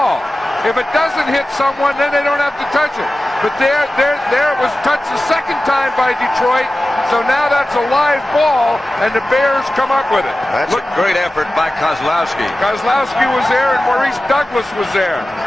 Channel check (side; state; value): both; normal; correlation 0.96